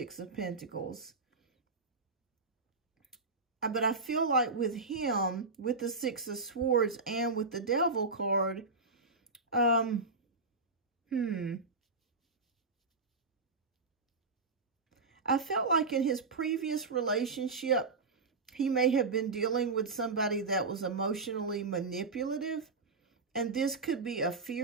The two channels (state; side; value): quieter; left; 3.9 dB